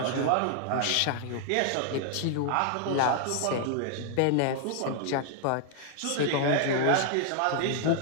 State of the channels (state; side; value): different; both; correlation -0.01